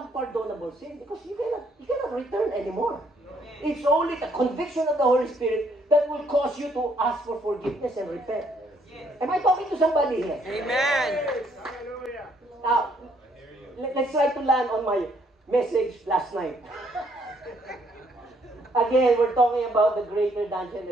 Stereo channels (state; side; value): normal; both; correlation 0.68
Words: unpardonable sin, because you cannot return anymore. It's only the conviction of the Holy Spirit that will cause you to ask for forgiveness and repent. Am I talking to somebody here? Amen. Now, let's try to land on my message last night. Again, we're talking about the greater than